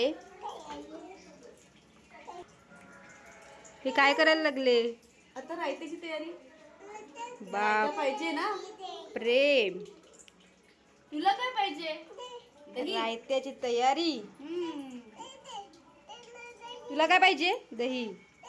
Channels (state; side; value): identical; both; correlation 1.00